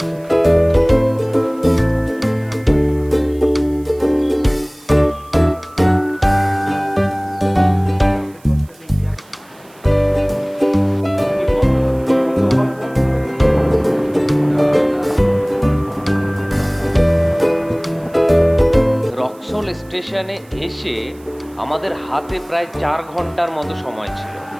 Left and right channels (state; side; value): noise; right; hiss, 28 dB below the sound